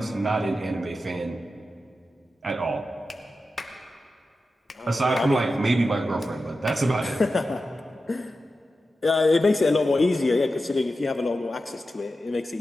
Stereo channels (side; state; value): both; normal; correlation 0.91